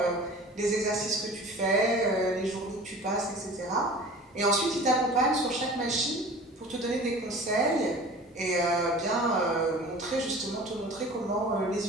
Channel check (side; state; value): both; normal; correlation 0.41